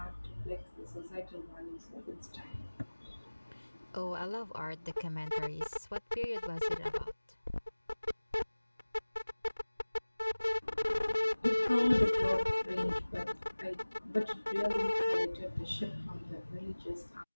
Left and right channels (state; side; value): inverted; both; correlation -1.00